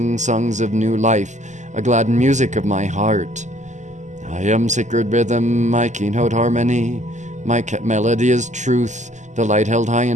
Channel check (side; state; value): left; late; 0.34 ms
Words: songs of new life, a glad music of my heart. I am sacred rhythm, my keynote harmony, my melody is truth, the light held high